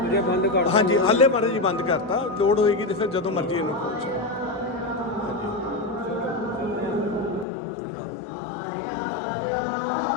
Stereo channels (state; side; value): drops out; right; at 7.5 s